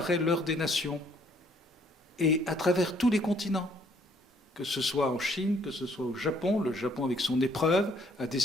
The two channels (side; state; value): both; normal; correlation 0.64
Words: l'heure des nations, et à travers tous les continents, que ce soit en Chine, que ce soit au Japon. Le Japon, avec son épreuve, a